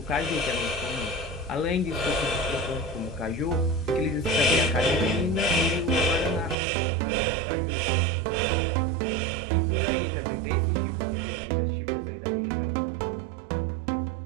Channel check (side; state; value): left; drops out; at 6.6 s